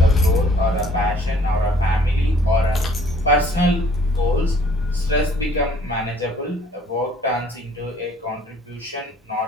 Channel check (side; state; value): both; normal; correlation 0.58